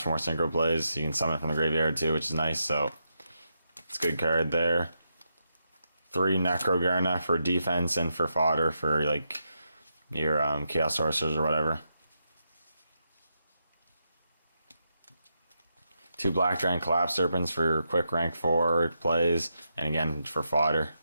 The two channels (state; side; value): inverted; both; correlation -0.84